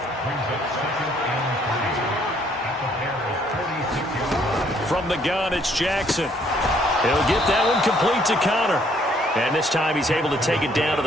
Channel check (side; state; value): both; normal; correlation 0.65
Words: From the gun, it's Jackson. He'll get that one complete to Connor. And this time he's able to take it down to